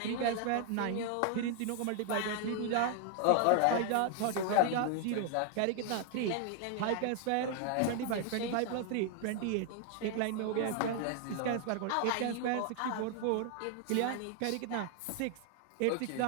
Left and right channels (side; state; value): both; different; correlation 0.00